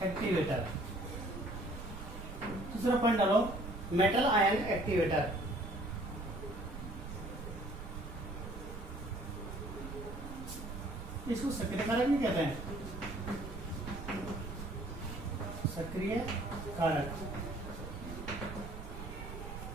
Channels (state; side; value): noise; right; rumble, 9 dB below the sound